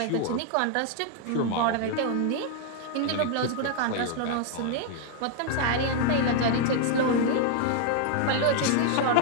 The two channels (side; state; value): both; different; correlation 0.00